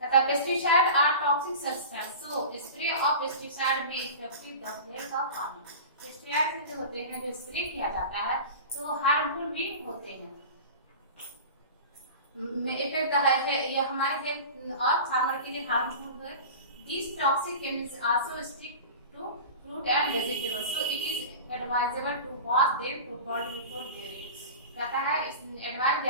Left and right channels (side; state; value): both; inverted; correlation -0.34